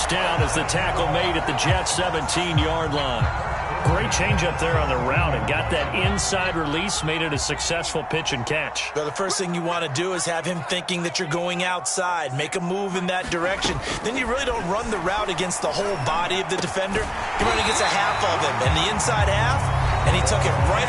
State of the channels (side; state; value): both; identical; correlation 1.00